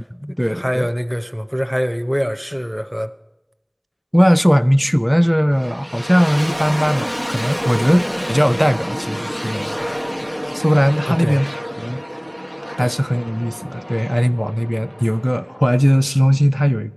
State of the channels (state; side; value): identical; both; correlation 1.00